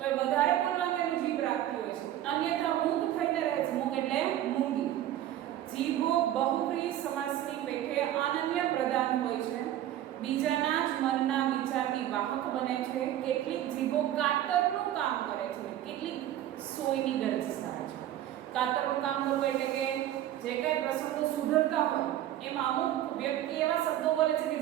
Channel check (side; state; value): left; quieter; 12.6 dB